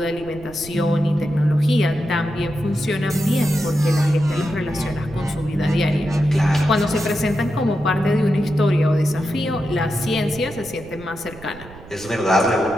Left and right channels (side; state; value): right; noise; rumble, 18 dB below the sound